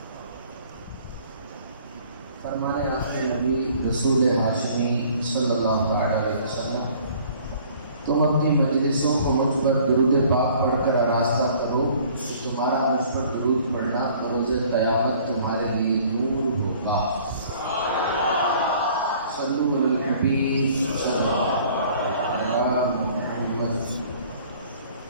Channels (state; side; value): inverted; both; correlation -0.54